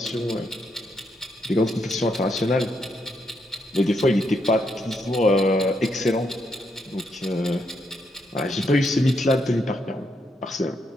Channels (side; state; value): both; normal; correlation 0.78